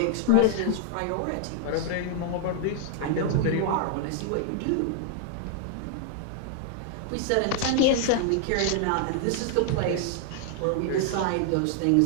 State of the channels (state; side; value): different; both; correlation 0.00